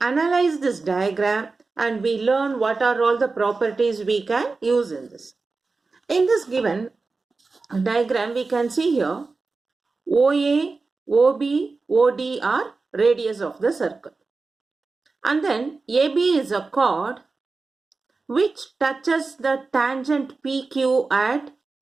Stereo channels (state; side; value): quieter; left; 4.0 dB